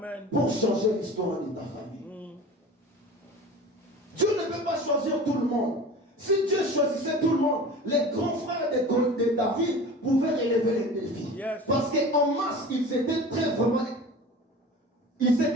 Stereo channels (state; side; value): normal; both; correlation 0.37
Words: pour changer l'histoire de ta famille. Dieu ne peut pas choisir tout le monde. Si Dieu choisissait tout le monde, les grands frères de David pouvaient relever les défis. Yes. Parce qu'en masse, ils étaient ils